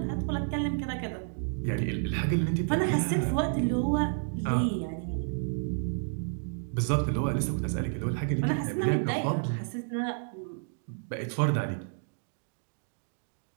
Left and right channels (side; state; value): left; silent; 57 dB below the other